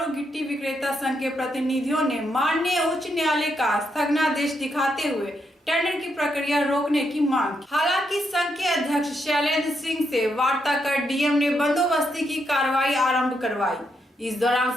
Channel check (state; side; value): normal; both; correlation 0.80